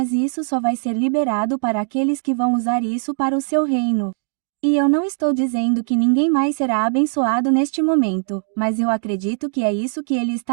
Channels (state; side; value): silent; left; digital silence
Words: isso só vai ser liberado para aqueles que vão usar isso para o seu reino. E eu não estou dizendo que ninguém mais será abençoado neste momento, mas eu acredito que é isso que ele